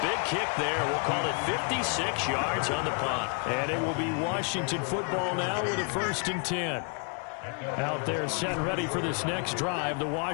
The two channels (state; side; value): quieter; right; 38.1 dB